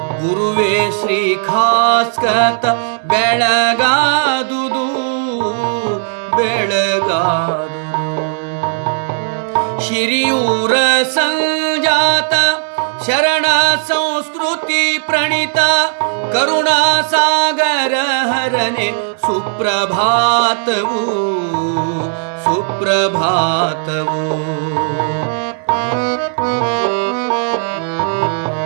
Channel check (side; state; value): left; silent; digital silence